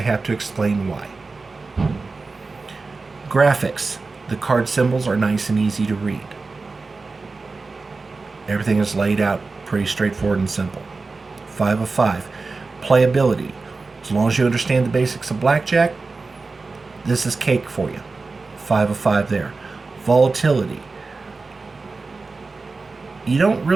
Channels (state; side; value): quieter; left; 3.9 dB